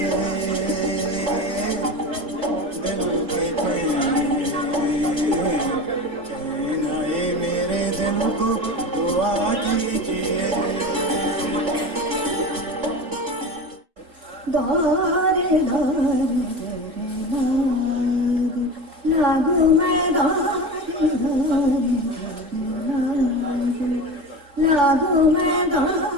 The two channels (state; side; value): late; left; 3.5 ms